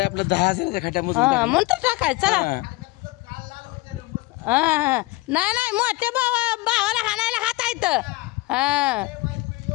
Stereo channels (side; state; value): right; quieter; 21.1 dB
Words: आपलं 10,000चा खड्या मुजवून हा टाकलाय. म्हणतो टाकाय चला. हा नाही नाही मोठ्या भावाला हाणायला हात आहेत. हा